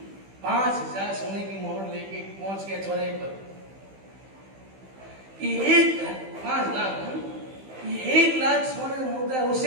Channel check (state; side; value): late; left; 15 ms